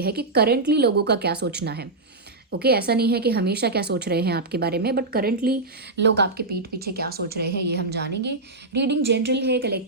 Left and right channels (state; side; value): quieter; left; 3.2 dB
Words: है कि करंटली लोगों का क्या सोचना है। ओके ऐसा नहीं है कि हमेशा क्या सोच रहे हैं आपके बारे में, बट करंटली लोग आपके पीठ पीछे क्या सोच रहे हैं ये हम जानेंगे। रीडिंग जनरल है,